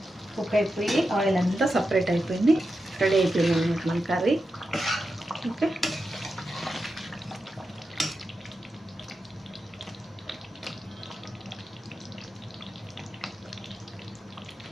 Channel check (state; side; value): normal; both; correlation 0.89